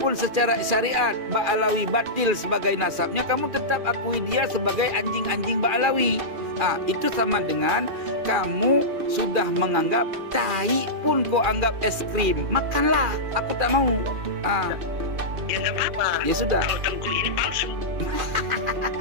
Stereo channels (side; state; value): left; late; 2.4 ms